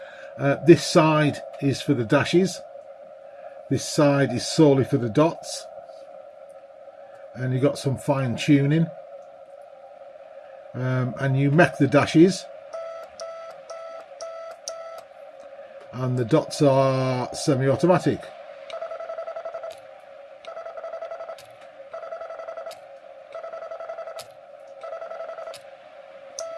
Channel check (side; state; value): both; identical; correlation 1.00